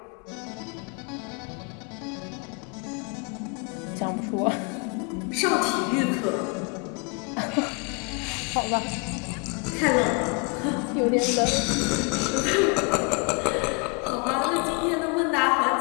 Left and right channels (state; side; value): quieter; right; 33.3 dB